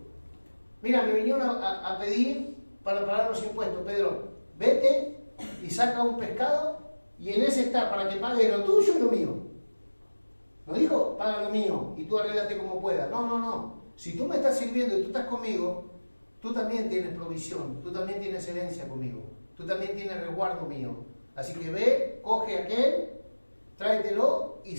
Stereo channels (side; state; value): both; inverted; correlation -1.00